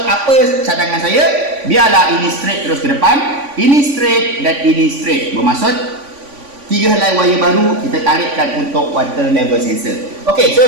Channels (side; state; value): left; late; 3.5 ms